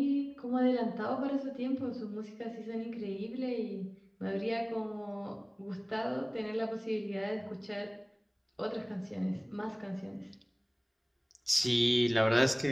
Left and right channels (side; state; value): both; identical; correlation 1.00